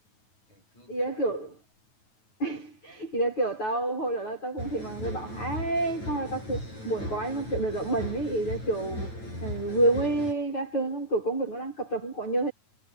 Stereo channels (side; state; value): right; late; 9.3 ms